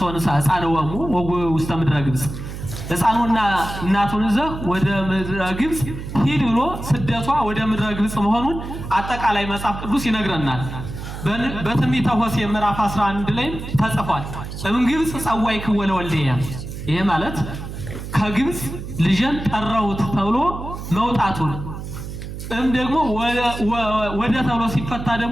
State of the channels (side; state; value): right; noise; hum, 9 dB below the sound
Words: ሕፃንወሙ ውስተ ምድረ ግብጽ ሕፃኑና እናቱን ይዘህ ወደ ምድረ ግብጽ ሂድ ብሎ ስደቷ ወደ ምድረ ግብጽ መሆኑን አጠቃላይ መጽሐፍ ቅዱስ ይነግረናል። በትንቢተ ሆሴዕ ምዕራፍ 11 ላይ ተጽፏል። ግብጽ ጸዋዕክዎ ለወልድየ ይሄ ማለት ከግብጽ ልጅን ጠራሁት ተብሎ መውጣቱን ደግሞ ወደ ተብሎ ሲፈታ